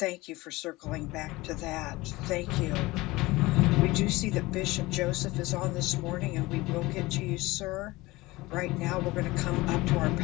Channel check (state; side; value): quieter; right; 20.5 dB